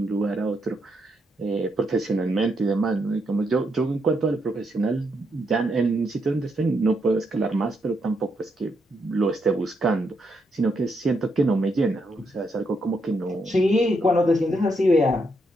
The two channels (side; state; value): both; normal; correlation 0.79